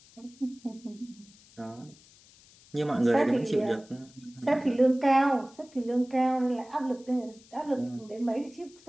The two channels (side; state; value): left; noise; hiss, 26 dB below the sound